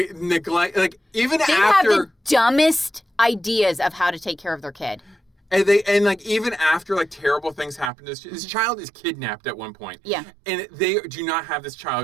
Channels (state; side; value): drops out; left; at 7.9 s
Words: neglect, like even they after. They have the dumbest ideas of how to take care of their kid. And like even after like terrible things happen, this child is kidnapped at one point. Yeah. And they do not have this